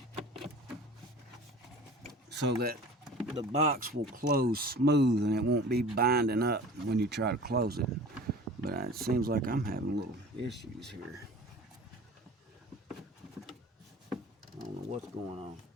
so that the box will close smooth and it won't be binding up when you try to close it. But it seems like I'm having little issues here. I don't know what's going on.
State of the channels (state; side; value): normal; both; correlation 0.42